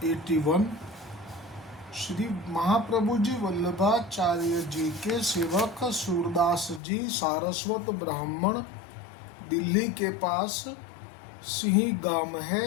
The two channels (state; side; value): drops out; right; at 6.8 s